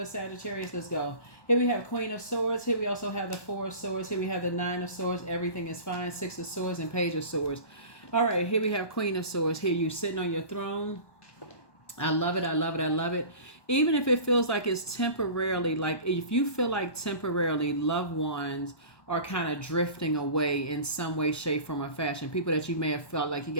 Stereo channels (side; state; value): right; late; 1.2 ms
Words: Sagittarius. Let's go. Here we have Queen of Swords. Here we also have the Four of Swords. Here we have the Nine of Swords. Everything is fine. Six of Swords and Page of Swords. All right, here we have Queen of Swords. Here you sitting on your throne. I love it. I love it. I love it. Even if it feels like it's temporarily, like if you feel like temporarily loved ones are kind of drifting away in some way, shape, form, or fashion. People that you may have felt like you